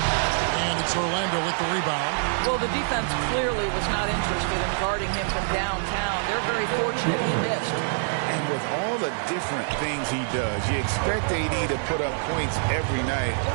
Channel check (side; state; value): left; silent; digital silence